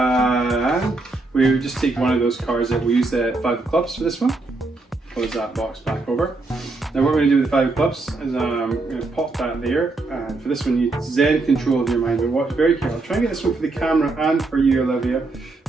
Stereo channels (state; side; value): quieter; left; 3.4 dB